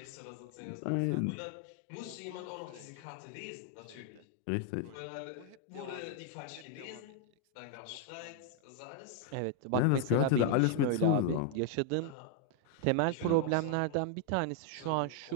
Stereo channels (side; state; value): both; different; correlation 0.00